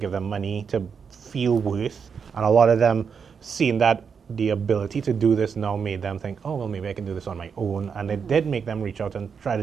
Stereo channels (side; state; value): left; quieter; 6.3 dB